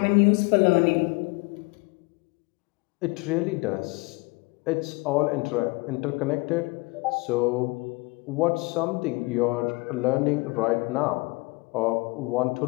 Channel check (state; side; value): quieter; right; 26.2 dB